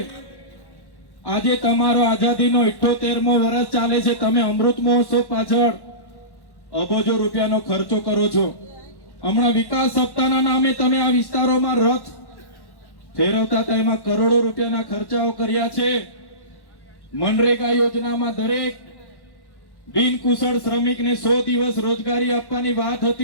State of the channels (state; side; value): late; right; 1.1 ms